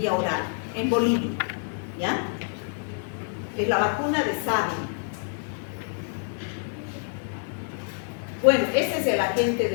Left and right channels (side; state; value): right; silent; 58 dB below the other